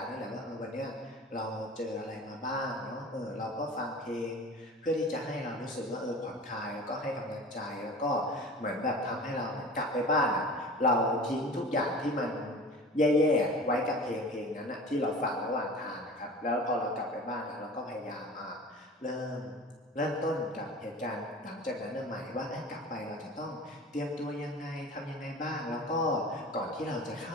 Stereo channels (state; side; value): normal; both; correlation 0.38